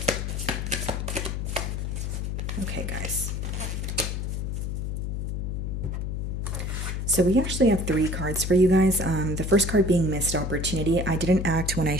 Okay, guys. So we actually have three cards for you guys. The first card being missed opportunity. I didn't act when I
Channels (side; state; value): left; noise; hum, 3 dB below the sound